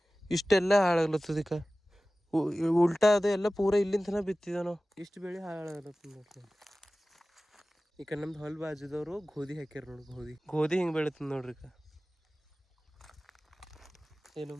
ಇಷ್ಟೆಲ್ಲ ಹಾಳಾಗ್ಲತ್ತದ. ಈಗ ಉಲ್ಟಾ ಅದು ಎಲ್ಲ ಪೂರ ಇಲ್ಲಿಂದ ತನಕ ಬಿತ್ತಿದ ನಾವು. ಇಷ್ಟು ಬೆಳೆ ಹಾಳಾಗ್ಲತ್ತದ ನೋಡ್ರಿ. ಈಗ ನಮ್ದು ಹೊಲ ಬಾಜುದವರು ಗೋಧಿ ಹಾಕ್ಯಾರ ನೋಡಿ. ಗೋಧಿ ಹಿಂಗೆ ಬೆಳೀತದ ನೋಡ್ರಿ. ಈಗ ಏನು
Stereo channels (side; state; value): both; normal; correlation 0.97